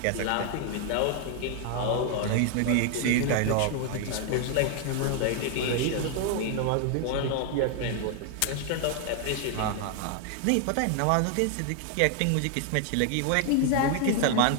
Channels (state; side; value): different; both; correlation 0.00